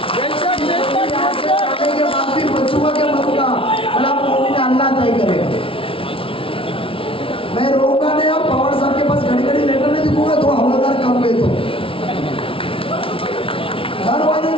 के बाद भी बचूंगा के मरूंगा, भला मोमिन अल्लाह तय करेगा। मैं रोऊंगा नहीं। और पवार साहब के पास घड़ी घड़ी लेटर नहीं दिखूंगा तो हवलदार कम गए तो घर वाले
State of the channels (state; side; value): late; right; 0.26 ms